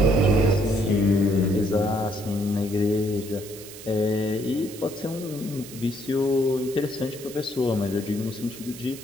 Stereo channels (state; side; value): noise; right; hiss, 15 dB below the sound